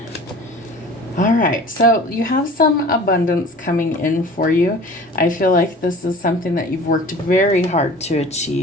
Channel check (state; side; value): normal; both; correlation 0.42